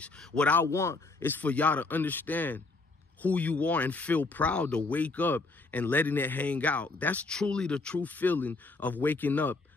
What I want is for y'all to understand who you are and feel proud to wake up and letting it hang out. That's truly the true feeling of waking up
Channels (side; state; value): right; quieter; 3.5 dB